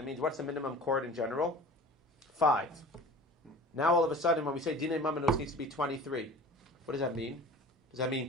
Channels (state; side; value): normal; both; correlation 0.40